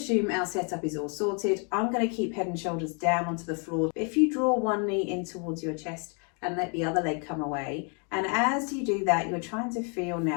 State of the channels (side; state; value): right; quieter; 37.7 dB